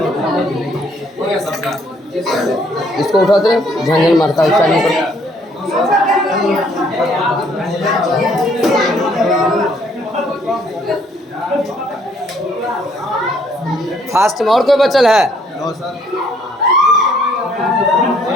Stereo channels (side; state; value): both; normal; correlation 0.65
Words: गया सबका इसको उठाते झंझन मारता है चालू कर फास्ट में और कोई बचल है